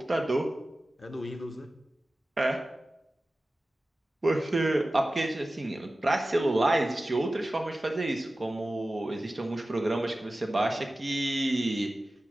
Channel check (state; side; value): normal; both; correlation 0.96